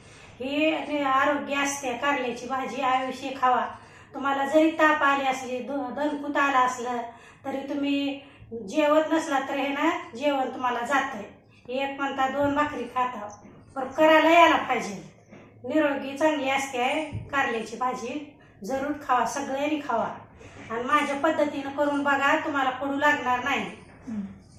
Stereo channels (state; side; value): identical; both; correlation 1.00